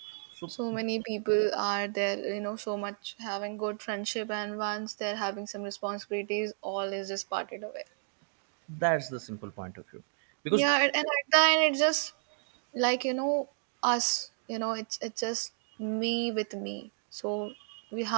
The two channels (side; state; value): left; silent; digital silence